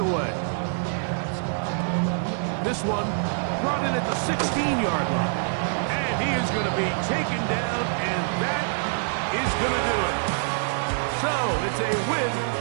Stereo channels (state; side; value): silent; left; digital silence